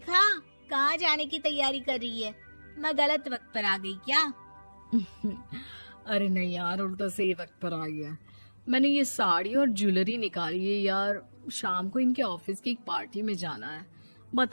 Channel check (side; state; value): both; inverted; correlation -1.00